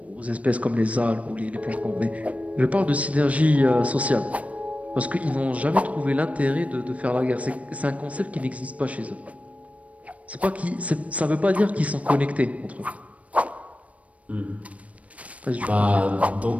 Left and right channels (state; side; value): late; left; 0.065 ms